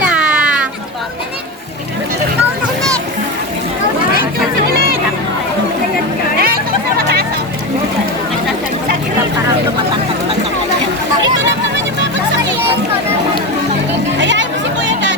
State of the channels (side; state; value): both; normal; correlation 0.19